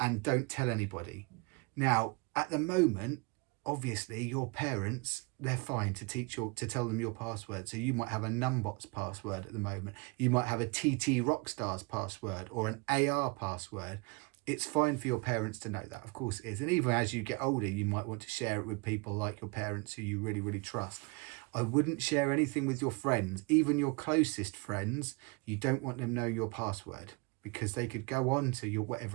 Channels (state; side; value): quieter; left; 28.7 dB